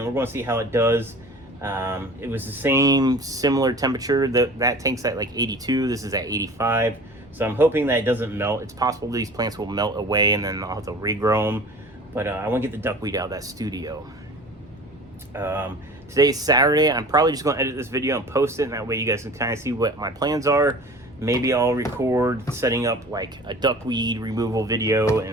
we're going to see how it does. It was the same similar temperature. That tank's at like 82. This is at 85. So I'm hoping that it doesn't melt. It's possible these plants will melt away and then I'll have to regrow them. But I want to get the duckweed out of that studio. Today's Saturday. I'm probably just going to edit this video and post it, and that way you guys can kind of see what my plans are. Maybe I'll record setting up like a duckweed removal video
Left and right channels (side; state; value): both; normal; correlation 0.41